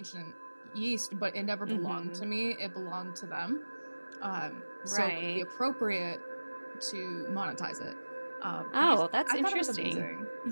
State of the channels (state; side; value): inverted; both; correlation -1.00